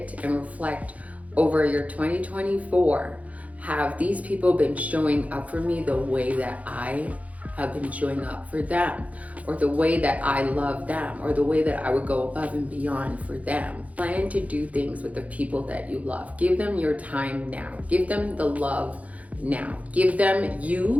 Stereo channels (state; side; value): late; left; 0.069 ms